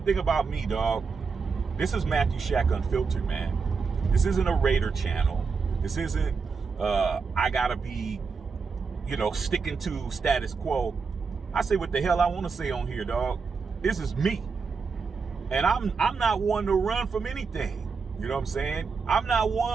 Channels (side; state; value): left; quieter; 5.1 dB